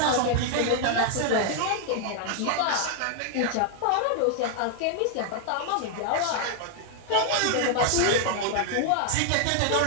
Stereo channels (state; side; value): different; both; correlation 0.00